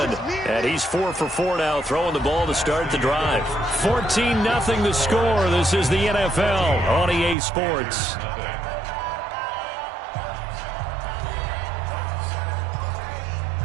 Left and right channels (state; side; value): drops out; left; at 7.4 s